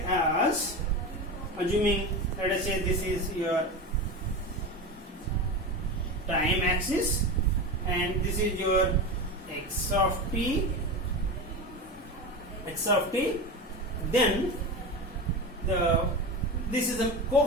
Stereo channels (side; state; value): both; normal; correlation 0.24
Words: as, assuming, let us say this is your time axis and this is your x of t, then this is the